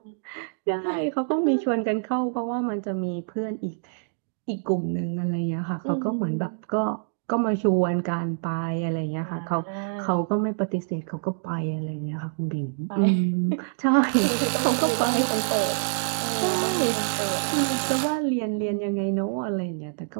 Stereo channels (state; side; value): silent; left; digital silence